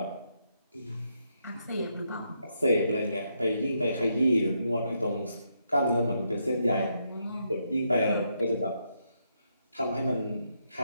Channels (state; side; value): inverted; both; correlation -0.79